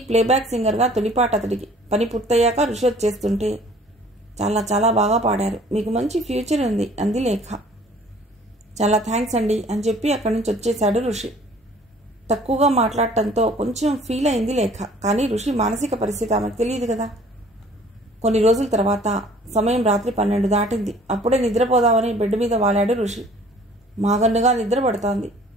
ప్లేబ్యాక్ సింగర్గా తొలిపాట అతడికి. పని పూర్తయ్యాక ఋషి వచ్చేస్తుంటే, చాలా చాలా బాగా పాడారు, మీకు మంచి ఫ్యూచర్ ఉంది అంది లేఖ. చాలా థ్యాంక్స్ అండి అని చెప్పి అక్కడి నుంచి వచ్చేశాడు ఋషి. తక్కువగా మాట్లాడటంతో కొంచెం ఫీల్ అయింది లేఖ. కానీ ఋషి మానసిక పరిస్థితి ఆమెకు తెలియదు కదా. కొన్ని రోజుల తర్వాత సమయం రాత్రి 12 దాటింది. అప్పుడే నిద్రపోదామని బెడ్ మీద వాలాడు ఋషి. మాగన్నుగా నిద్ర పడుతోంది.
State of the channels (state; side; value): normal; both; correlation 0.53